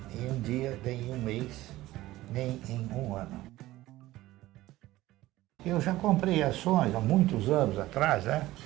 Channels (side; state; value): left; quieter; 16.7 dB